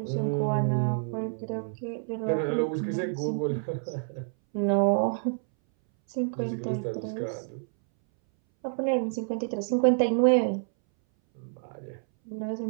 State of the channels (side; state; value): left; silent; 59 dB below the other